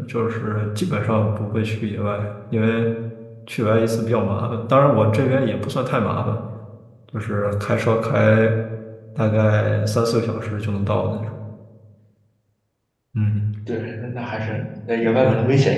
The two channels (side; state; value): both; identical; correlation 1.00